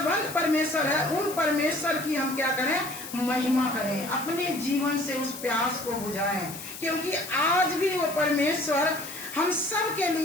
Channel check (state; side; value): noise; left; hiss, 11 dB below the sound